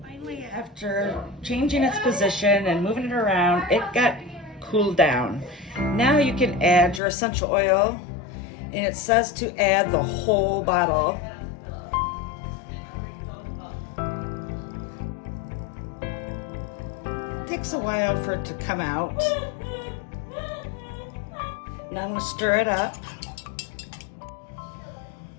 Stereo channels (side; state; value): right; drops out; at 7.0 s